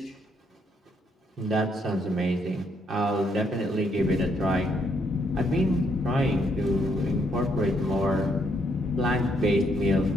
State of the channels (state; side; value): normal; both; correlation 0.73